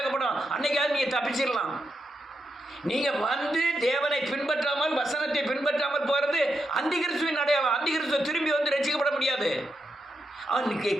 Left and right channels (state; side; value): normal; both; correlation 0.84